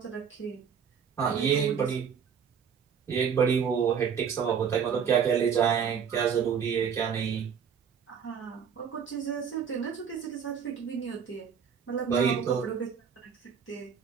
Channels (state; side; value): quieter; left; 7.2 dB